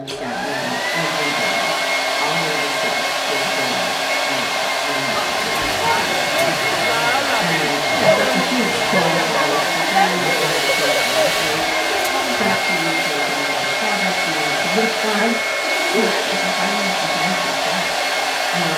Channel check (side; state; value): both; identical; correlation 1.00